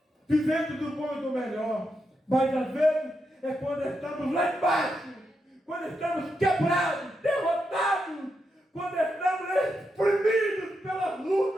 vivendo do bom e do melhor, mas às vezes é quando estamos lá embaixo, quando estamos quebrados, derrotados, quando estamos exprimidos pelas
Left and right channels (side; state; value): both; normal; correlation 0.84